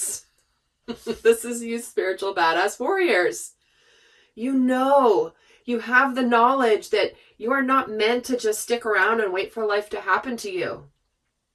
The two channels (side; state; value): both; identical; correlation 1.00